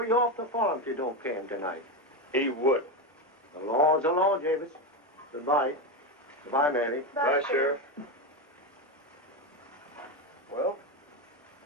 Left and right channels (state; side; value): normal; both; correlation 0.13